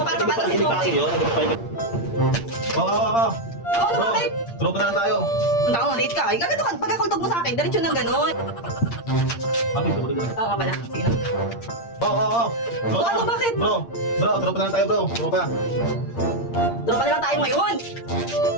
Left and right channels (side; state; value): right; late; 8.7 ms